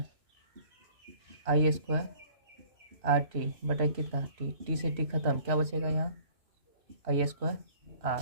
आई स्क्वायर आर टी बटा कितना टी, टी से टी खत्म, क्या बचेगा यहाँ, आई स्क्वायर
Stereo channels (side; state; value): left; late; 3.0 ms